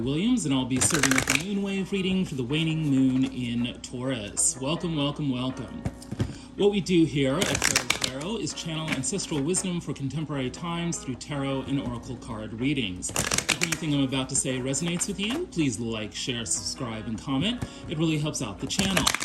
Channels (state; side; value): identical; both; correlation 1.00